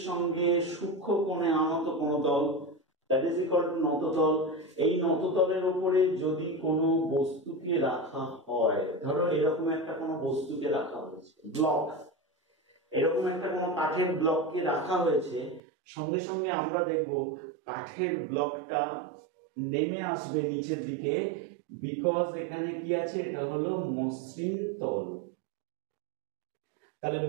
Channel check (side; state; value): left; drops out; at 15.6 s